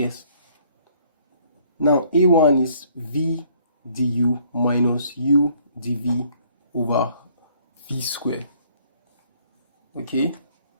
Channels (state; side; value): inverted; both; correlation -0.61